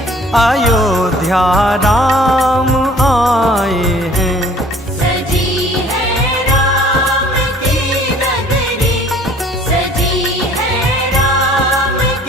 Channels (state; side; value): normal; both; correlation 0.53